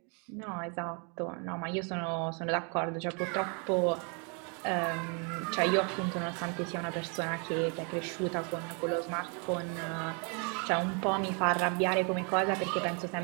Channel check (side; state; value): left; quieter; 35.9 dB